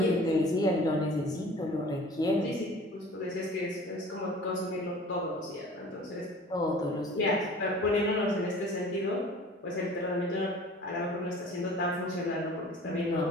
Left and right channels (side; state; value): both; normal; correlation 0.45